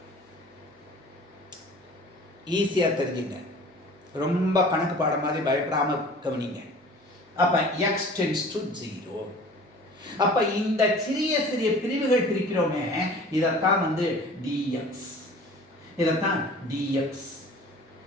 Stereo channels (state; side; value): normal; both; correlation 0.45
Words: ஈஸியா தெரிஞ்சுங்க, ரொம்ப கணக்கு பாடம் மாதிரி பயப்படாம கவனிங்க. அப்ப x tends to 0. அப்ப இந்த சிறிய சிறிய பிரிவுகள் பிரிக்கிறோமே, இதத்தான் dx, இதத்தான் dx,